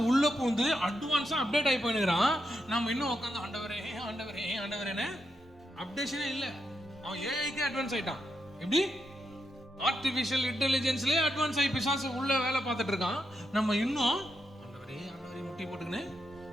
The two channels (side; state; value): both; normal; correlation 0.83